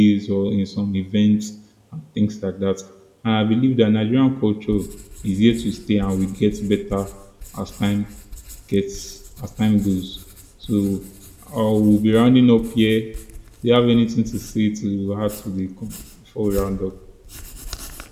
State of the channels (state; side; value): identical; both; correlation 1.00